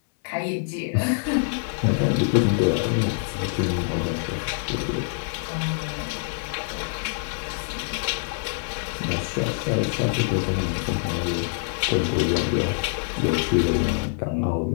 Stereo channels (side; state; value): right; silent; 62 dB below the other